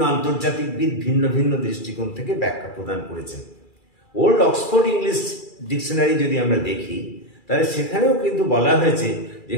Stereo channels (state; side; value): late; right; 2.4 ms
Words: আন্তর্জাতিকবিদ ভিন্ন ভিন্ন দৃষ্টিকোণ থেকে ব্যাখ্যা প্রদান করেছেন। ওল্ড অক্সফোর্ড ইংলিশ ডিকশনারি যদি আমরা দেখি, তাহলে সেখানেও কিন্তু বলা হয়েছে যে